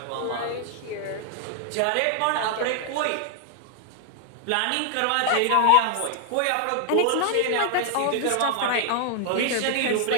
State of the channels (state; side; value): different; both; correlation 0.00